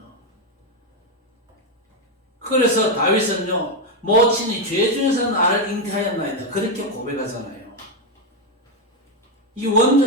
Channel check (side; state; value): both; normal; correlation 0.06